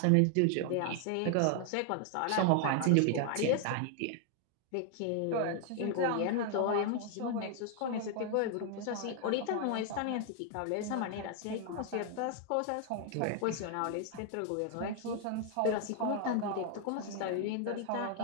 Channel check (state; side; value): different; both; correlation 0.00